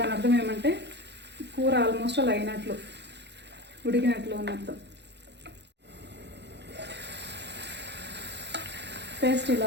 అర్థం ఏమంటే కూర ఆల్మోస్ట్ అలా అయినట్లు, ఉడికినట్లు అని అర్థం. పేస్ట్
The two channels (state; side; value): late; left; 0.50 ms